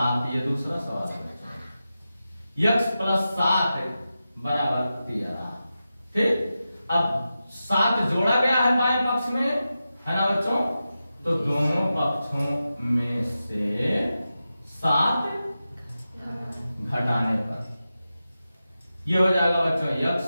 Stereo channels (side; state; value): both; inverted; correlation -0.92